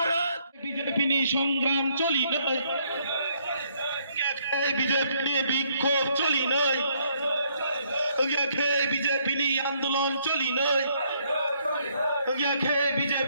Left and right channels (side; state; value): both; inverted; correlation -0.69